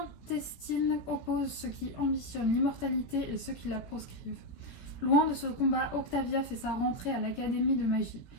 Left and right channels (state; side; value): late; right; 17 ms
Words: oppose ceux qui ambitionnent l'immortalité et ceux qui la proscrivent. Loin de ce combat, Octavia fait sa rentrée à l'Académie de magie.